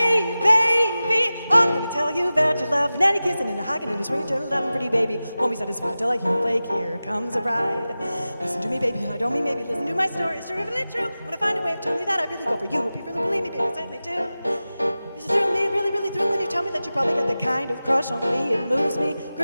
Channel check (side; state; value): both; inverted; correlation -0.96